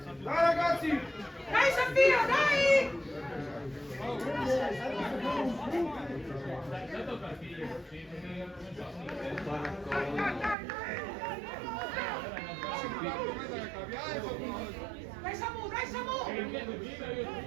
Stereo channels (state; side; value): drops out; left; at 10.6 s